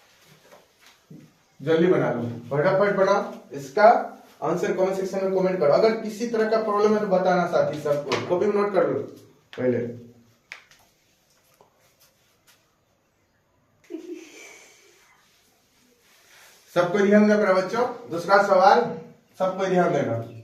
जल्दी बना लो, फटाफट बनाओ। इसका आंसर कमेंट सेक्शन में कमेंट करो। अगर किसी तरह का प्रॉब्लम है तो बताना साथी सबको। कॉपी में नोट कर लो पहले। सबको ध्यान देना बच्चों। दूसरा सवाल सबको ध्यान देना।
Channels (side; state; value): both; identical; correlation 1.00